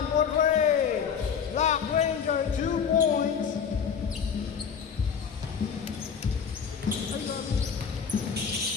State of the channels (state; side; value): quieter; right; 6.9 dB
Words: for break. Black Ranger, 2 points.